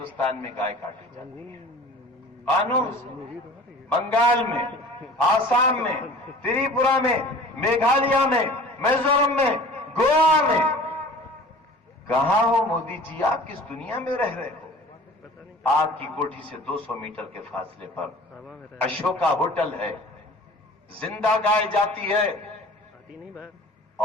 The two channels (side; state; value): both; normal; correlation 0.44